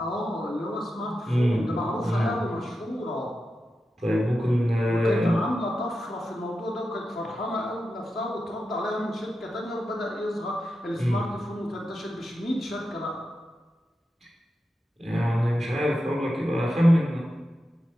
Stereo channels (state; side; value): normal; both; correlation 0.90